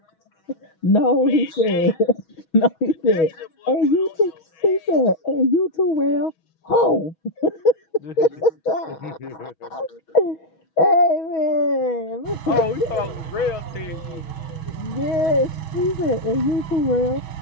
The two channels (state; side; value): late; right; 6.2 ms